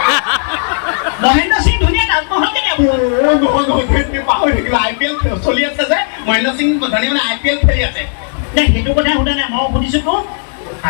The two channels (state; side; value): silent; right; digital silence